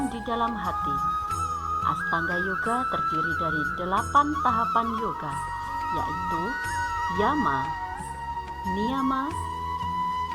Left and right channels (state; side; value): identical; both; correlation 1.00